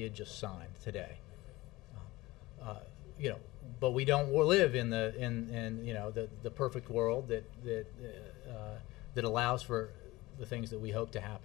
had just signed today. You know, but we don't live in the perfect world that allows for the things that we hope to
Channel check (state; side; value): quieter; right; 19.9 dB